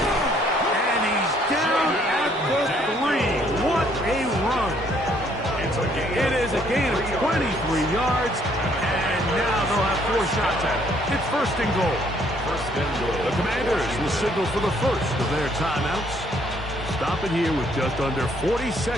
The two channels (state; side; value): normal; both; correlation 0.66